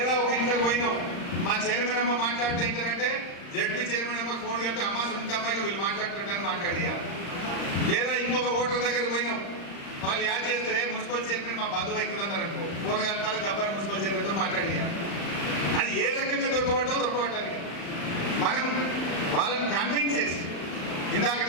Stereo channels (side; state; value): right; late; 35 ms